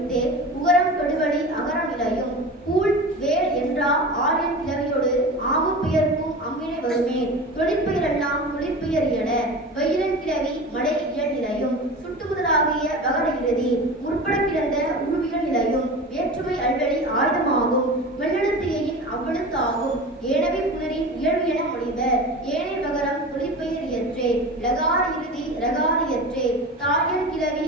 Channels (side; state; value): both; normal; correlation 0.32